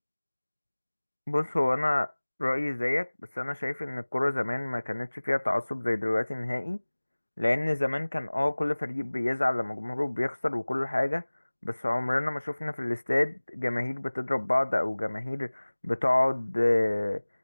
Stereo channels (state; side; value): inverted; both; correlation -1.00